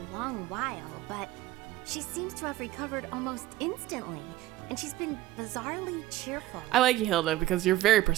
long while, but she seems to have recovered almost instantly, and she's been bizarrely cheerful. I like you, Hilda, because you're very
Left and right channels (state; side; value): quieter; left; 15.6 dB